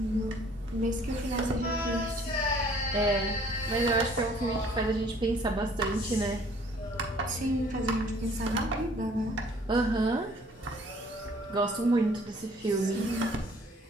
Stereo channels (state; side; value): normal; both; correlation 0.57